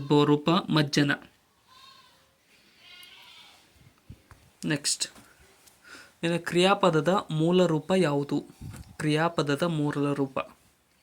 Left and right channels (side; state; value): both; identical; correlation 1.00